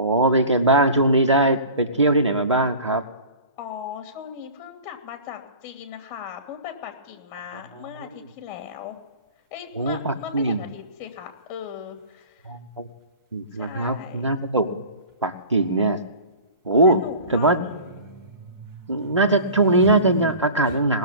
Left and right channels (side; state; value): both; inverted; correlation -0.39